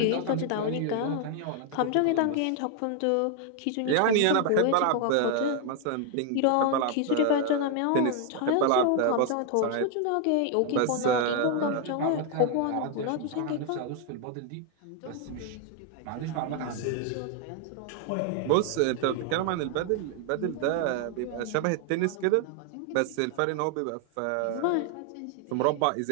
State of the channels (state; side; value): different; both; correlation 0.00